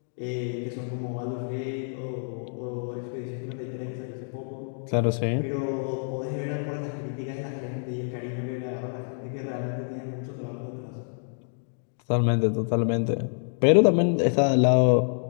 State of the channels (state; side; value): silent; right; digital silence